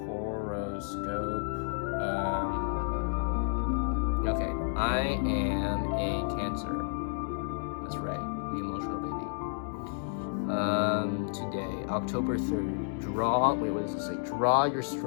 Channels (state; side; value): silent; right; 57 dB below the other